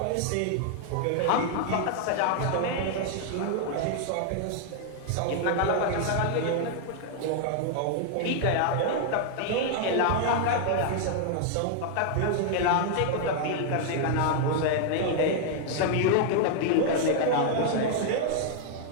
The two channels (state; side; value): different; both; correlation 0.00